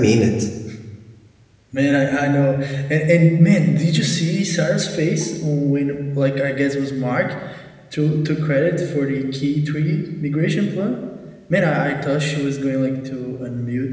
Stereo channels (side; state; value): both; identical; correlation 1.00